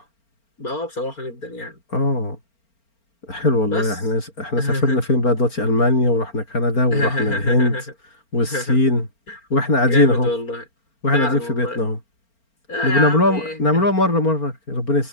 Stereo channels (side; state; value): right; late; 4.4 ms